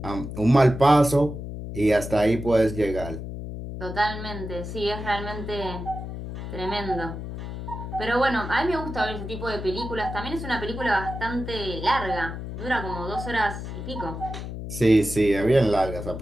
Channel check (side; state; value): left; noise; hum, 8 dB below the sound